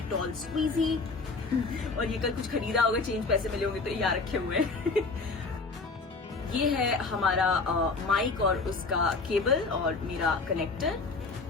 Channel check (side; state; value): right; quieter; 4.0 dB